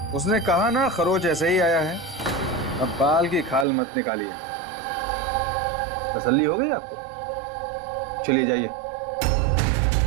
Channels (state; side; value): drops out; left; at 3.7 s